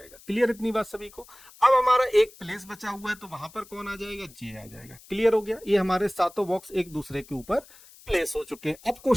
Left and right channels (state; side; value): noise; left; hiss, 23 dB below the sound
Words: क्लियर इतनी बात सभी को। अब हमारा एक प्लेस बचा हुआ है, तो वहां पर कौन आ जाएगा? जे आ जाएगा। क्लियर हो गया। ये हमारे 7 बॉक्स एक दूसरे के ऊपर प्लेस हो चुके हैं। अब